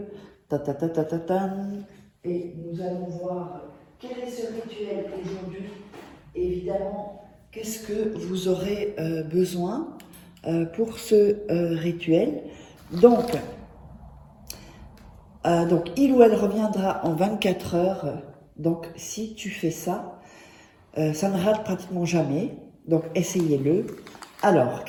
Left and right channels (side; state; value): both; identical; correlation 1.00